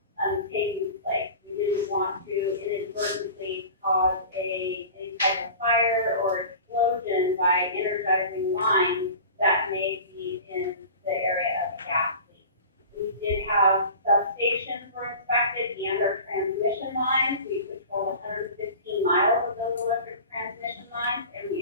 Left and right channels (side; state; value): both; inverted; correlation -0.38